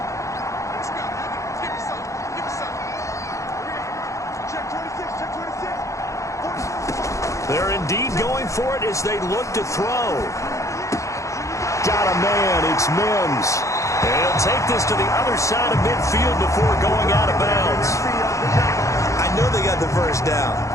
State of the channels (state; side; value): late; right; 0.15 ms